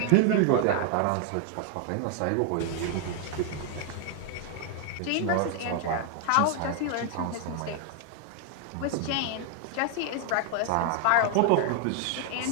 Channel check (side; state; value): both; different; correlation 0.00